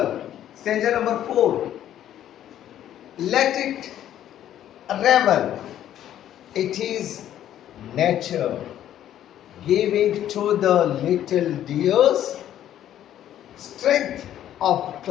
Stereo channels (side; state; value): right; quieter; 11.4 dB